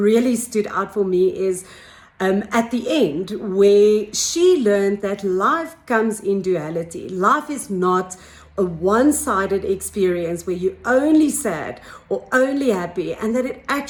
stood out for me is at the end, where she learned that life comes in duality. Life is not a one-sided experience where you're only sad or only happy, and that it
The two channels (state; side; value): identical; both; correlation 1.00